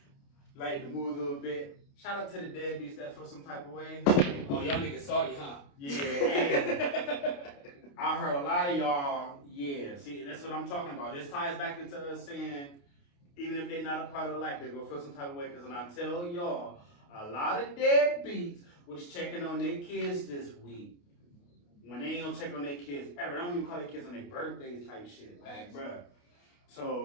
like to move a little bit. Shout out to the deadbeats that feel some type of way. Oh, y'all niggas salty, huh? Yeah, and I heard a lot of y'all, yeah. See, that's what I'm talking about. This ties back into us saying, even if they're not a part of life, they're gonna feel some type of way. Because when I tell y'all, a lot of deadbeats was checking on their kids this week. When they ain't gonna check on their kids ever. They don't even call their kids on their birthdays type shit. Like, bruh.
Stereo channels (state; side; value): late; right; 29 ms